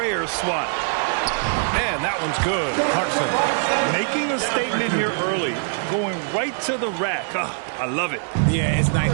swat. And that one's good. Clarkson. Making a statement here early. Going right to the rack. I love it. Yeah, it's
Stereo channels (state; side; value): silent; left; digital silence